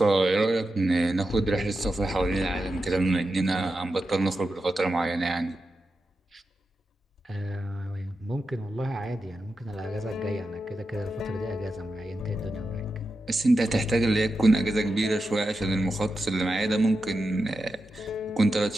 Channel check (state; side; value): normal; both; correlation 0.89